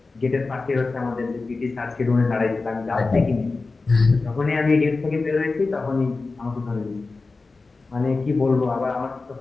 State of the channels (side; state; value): right; quieter; 3.8 dB